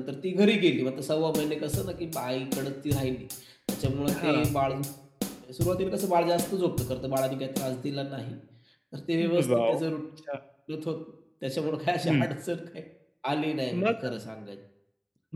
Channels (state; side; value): identical; both; correlation 1.00